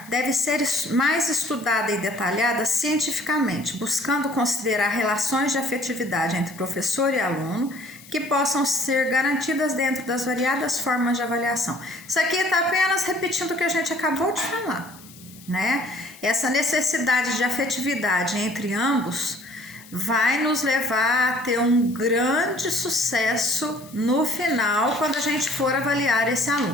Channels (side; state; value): left; noise; hiss, 21 dB below the sound